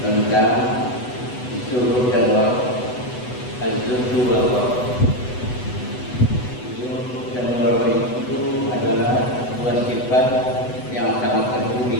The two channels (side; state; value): right; late; 8.0 ms